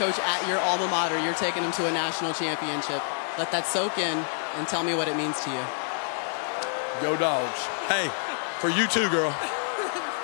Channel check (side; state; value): right; silent; digital silence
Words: at your alma mater, you're taking them to a national championship. Let that soak in and tell me what it means to you. Go Dogs. Hey, for you too, girl.